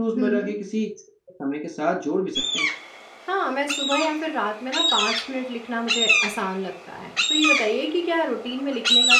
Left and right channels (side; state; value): both; identical; correlation 1.00